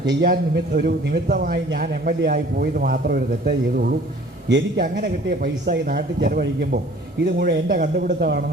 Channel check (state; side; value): normal; both; correlation 0.51